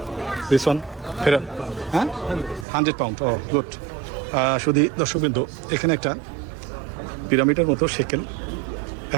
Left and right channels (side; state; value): left; drops out; at 2.7 s